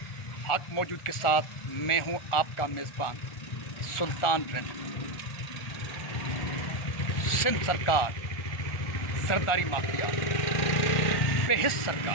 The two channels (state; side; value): late; right; 1.4 ms